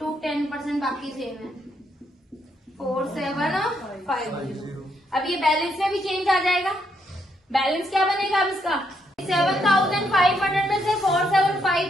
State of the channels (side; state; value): both; normal; correlation 0.76